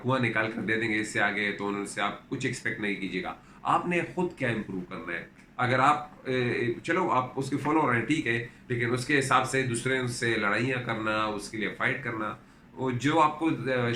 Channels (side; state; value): both; identical; correlation 1.00